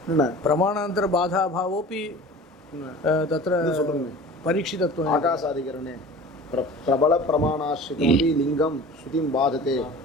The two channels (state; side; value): normal; both; correlation 0.40